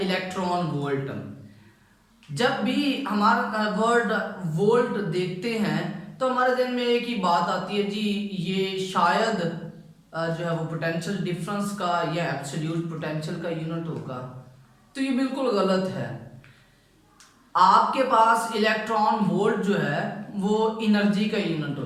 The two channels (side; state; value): both; identical; correlation 1.00